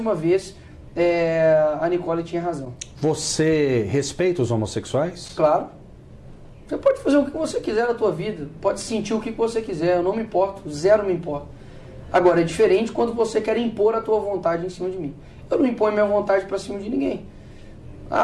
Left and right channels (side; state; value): both; identical; correlation 1.00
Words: vez, a Nicole tinha razão. Você respeita os homossexuais? Claro. Você pode fazer o que você quiser na tua vida, pode sentir o que você quiser, eu não me importo, zero me importa. Agora, é diferente quando você quer impor a tua vontade em cima de mim. Eu não imponho minha vontade para cima de ninguém.